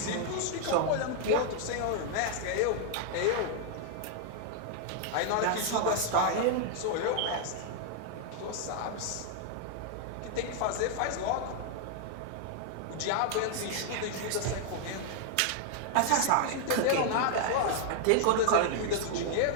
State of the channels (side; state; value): both; different; correlation -0.01